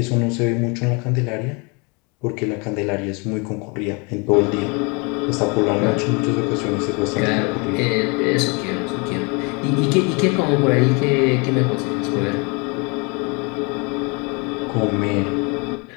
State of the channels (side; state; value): right; quieter; 31.1 dB